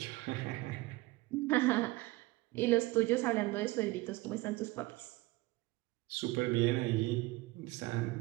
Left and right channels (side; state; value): left; quieter; 20.2 dB